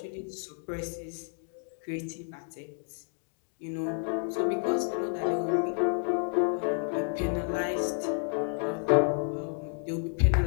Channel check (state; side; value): silent; right; 57 dB below the other